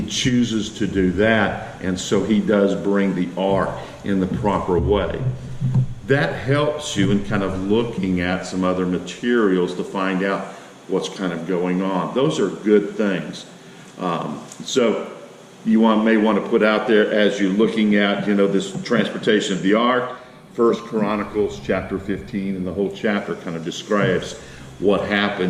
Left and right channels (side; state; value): both; identical; correlation 1.00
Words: chooses to do that, and so he does bring the ark in the proper way. That helps you in kind of looking at some other materials to find out what's kind of going on. Those are good things. So you may want to put out there as you're looking at, this transportation of the ark, 1 Chronicles chapter 15, and the whole chapter kind of describes what